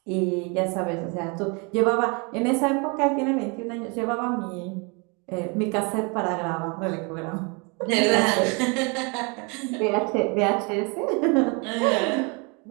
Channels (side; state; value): left; quieter; 31.6 dB